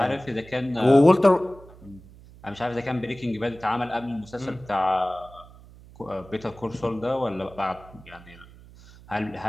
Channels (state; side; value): noise; right; hum, 21 dB below the sound